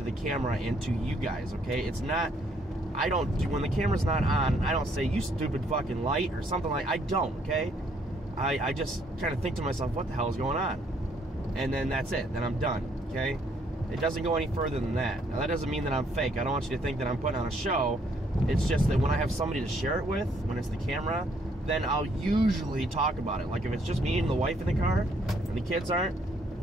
the camera and to you guys, okay? It's not, I don't do, when the camera's not on, I don't say, you stupid fucking light or something like, I don't, okay? I just kind of think to myself, what the hell is going on? And then that's it, then I'm done, okay? It doesn't go any further than that. Now, that doesn't mean that I'm fake. I don't want you to think that I'm putting on a show. It's just that when I have somebody to share it with, when it's the camera, then I'll usually talk about it. Like, if it's just me and the wife in the car, and the kids aren't,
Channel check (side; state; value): both; normal; correlation 0.67